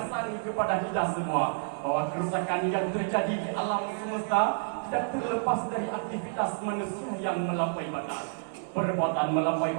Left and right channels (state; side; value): silent; left; digital silence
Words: kepada kita semua bahwa kerusakan yang terjadi di alam semesta tidak terlepas dari aktivitas manusia yang melampaui batas. Perbuatan melampaui